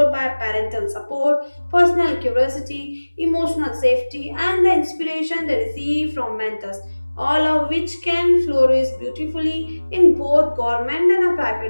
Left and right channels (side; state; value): both; inverted; correlation -1.00